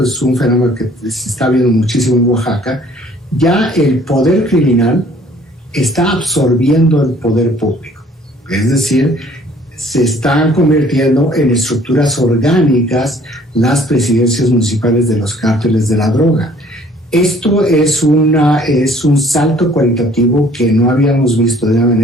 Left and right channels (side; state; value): both; normal; correlation 0.56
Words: es un fenómeno que se está viendo muchísimo en Oaxaca, ya el poder criminal está absorbiendo el poder público. Es decir, se están convirtiendo en estructuras orgánicas las presidencias municipales de los cárteles de la droga. Esto es un salto cualitativo que no habíamos visto de una